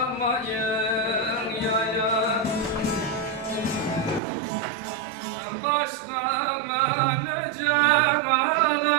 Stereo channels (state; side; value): drops out; left; at 4.2 s